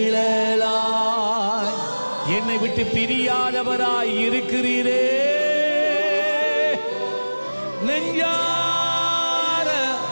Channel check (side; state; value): both; inverted; correlation -1.00